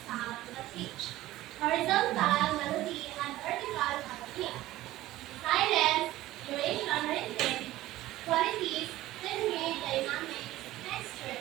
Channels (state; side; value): quieter; left; 16.0 dB